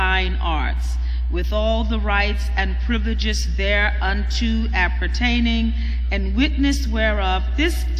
Arts, with all the rights and privileges thereunto appertaining, and witness whereof this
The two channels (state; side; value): identical; both; correlation 1.00